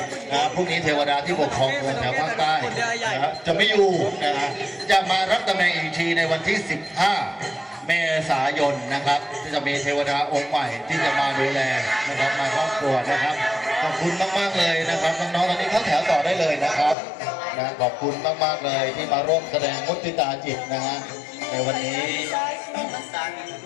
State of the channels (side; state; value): right; drops out; at 16.9 s